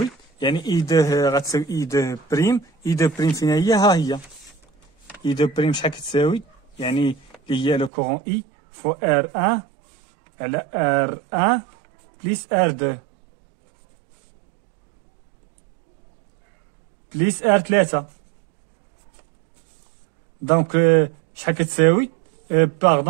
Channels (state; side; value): drops out; left; at 7.9 s